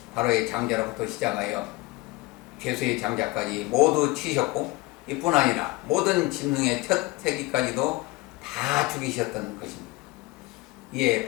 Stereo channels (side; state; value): right; quieter; 22.2 dB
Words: 바로의 장자로부터 시작하여 죄수의 장자까지 모두 치셨고 이뿐 아니라 모든 짐승의 첫 새끼까지도 다 죽이셨던 것입니다. 이에